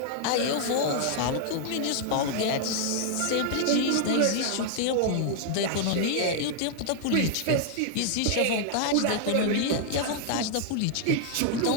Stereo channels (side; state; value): both; different; correlation -0.01